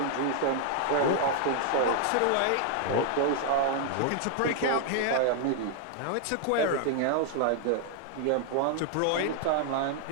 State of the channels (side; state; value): both; different; correlation 0.00